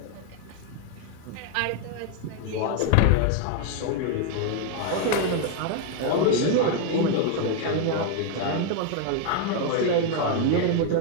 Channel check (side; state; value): both; different; correlation 0.00